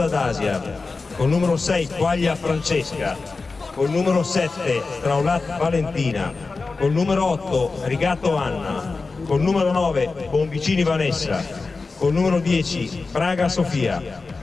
Dasia, con numero 6 Quaglia Francesca, con numero 7 Straulat Valentina, con numero 8 Rigatto Anna, con numero 9 Bonvicini Vanessa, con numero 10 Braga Sofia,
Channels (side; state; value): right; quieter; 4.0 dB